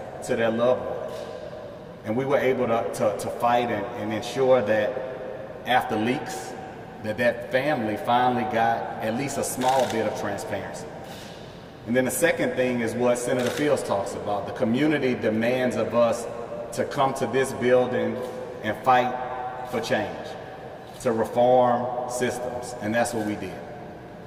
to their loved one. And we were able to fight and ensure that after leaks, that family finally got at least a small bit of transparency. And then the second thing is what Senator Fields talks about. The community demands of us to come to this building and fight for change, to reform systems, and that's what we did.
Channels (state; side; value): identical; both; correlation 1.00